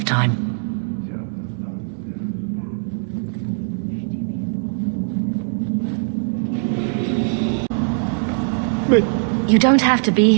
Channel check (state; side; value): silent; left; digital silence